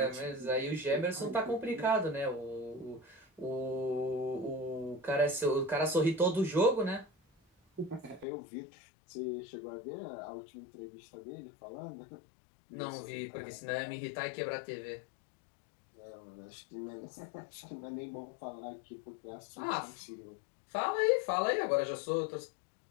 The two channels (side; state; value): right; drops out; at 8.2 s